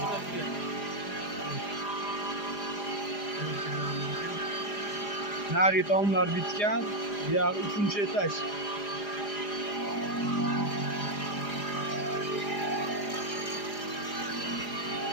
Nari tomlar bitgan. Bu yoq uchinchi etaj.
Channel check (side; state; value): right; late; 4.9 ms